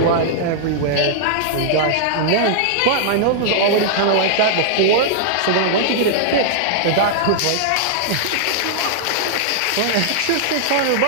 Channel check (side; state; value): both; different; correlation -0.01